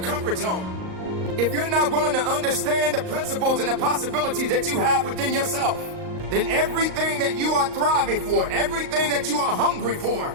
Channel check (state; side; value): late; left; 38 ms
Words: comfort zone, if you're not willing to understand the principles and the possibilities that you have within yourself, then everything that you are thriving for, everything that you are hungry for,